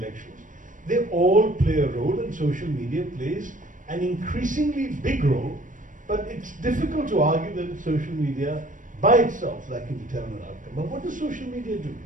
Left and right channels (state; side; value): late; left; 0.38 ms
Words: they all play a role, and social media plays an increasingly big role, but it's difficult to argue that it's social media by itself that can determine an outcome. But what does social media do?